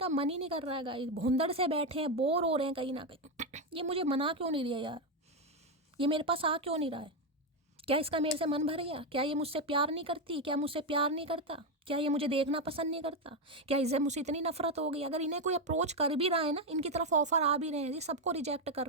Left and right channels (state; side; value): normal; both; correlation 0.07